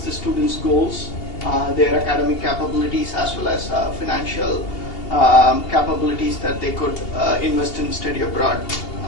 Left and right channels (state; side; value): late; right; 2.8 ms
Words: the students' goals, their academic capabilities, as well as financial capabilities that they could invest in study abroad,